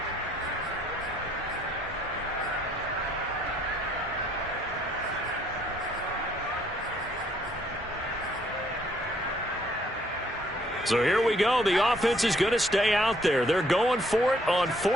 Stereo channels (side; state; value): both; normal; correlation 0.66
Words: So here we go. The offense is going to stay out there. They're going for it on